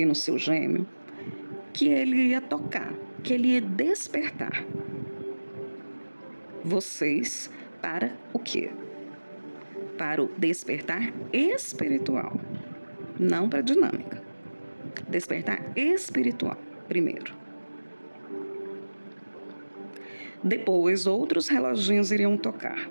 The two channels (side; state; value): both; inverted; correlation -1.00